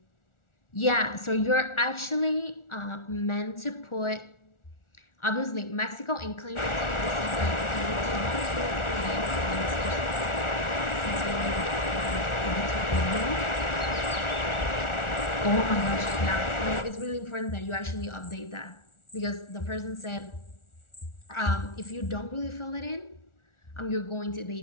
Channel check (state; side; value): late; right; 1.4 ms